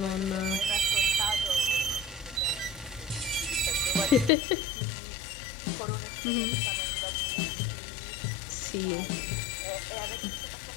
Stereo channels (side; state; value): right; drops out; at 4.3 s